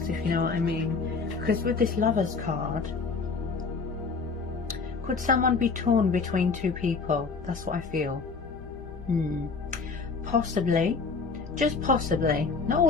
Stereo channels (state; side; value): quieter; right; 4.7 dB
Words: if you know what I mean. Because with this Lovers card, could someone be torn between 2 people? That's what I feel. Possibly. Just possibly, not